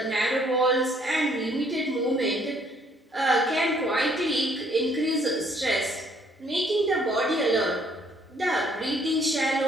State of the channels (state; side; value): normal; both; correlation 0.64